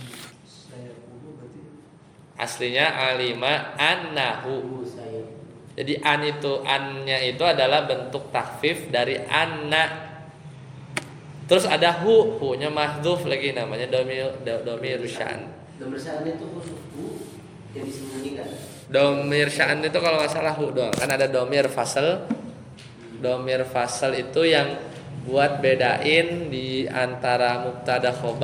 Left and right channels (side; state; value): both; identical; correlation 1.00